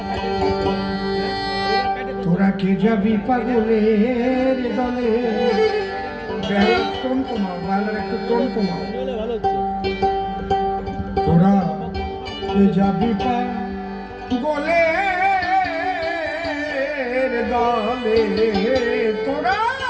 তোরা কে যাবি পাগলের দলে টোন কমাও বাংলার একটু টোন কমাও তোরা কে যাবি পাগলের দলে তোরা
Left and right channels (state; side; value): identical; both; correlation 1.00